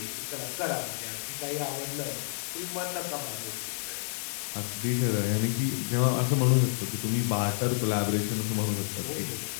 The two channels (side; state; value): right; silent; digital silence